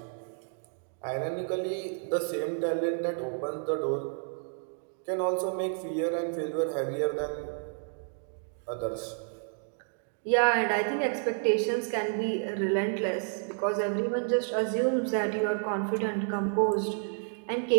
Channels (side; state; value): left; silent; digital silence